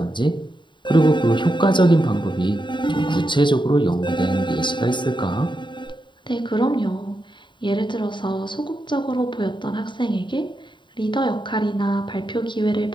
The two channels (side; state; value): right; late; 0.23 ms